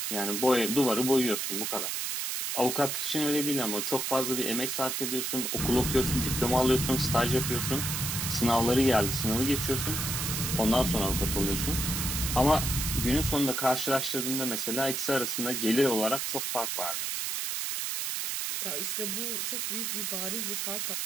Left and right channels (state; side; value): noise; right; hiss, 1 dB below the sound